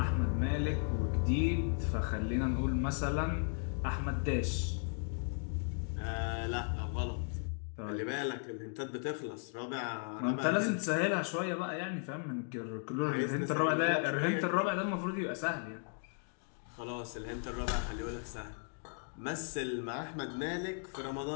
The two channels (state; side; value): silent; right; 54 dB below the other